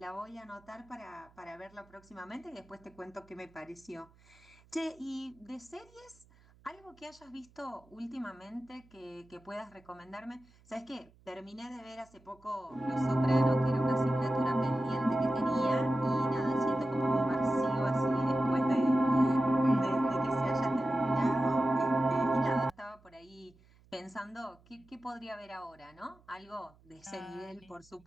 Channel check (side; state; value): right; noise; hum, 28 dB below the sound